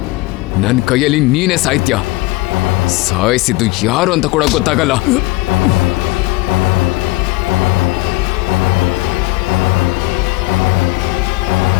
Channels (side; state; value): right; quieter; 21.0 dB